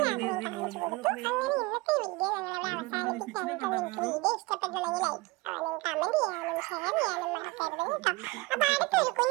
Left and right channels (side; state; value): left; quieter; 23.4 dB